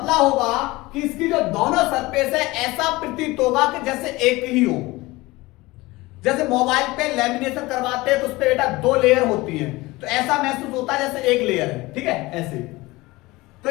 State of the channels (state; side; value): quieter; right; 20.9 dB